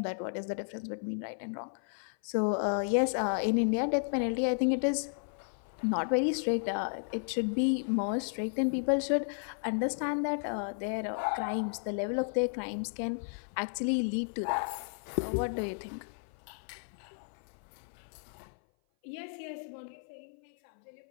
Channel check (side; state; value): right; silent; 56 dB below the other